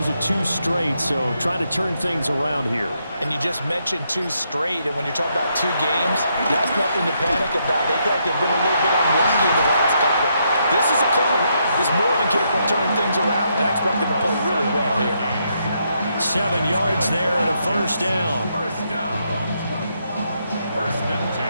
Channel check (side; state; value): both; inverted; correlation -0.77